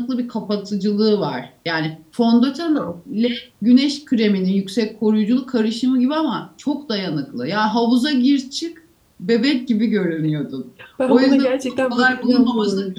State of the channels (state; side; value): identical; both; correlation 1.00